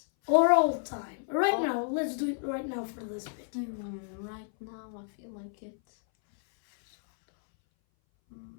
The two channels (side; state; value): right; silent; 57 dB below the other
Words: Or all time. Right now, let's do it right now for this video. Right now, I feel like it's...